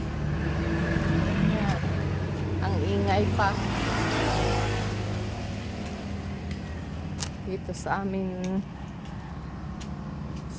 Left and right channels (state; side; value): identical; both; correlation 1.00